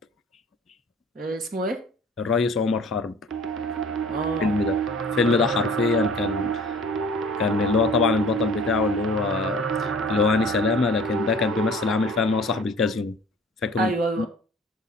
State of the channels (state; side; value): normal; both; correlation 0.47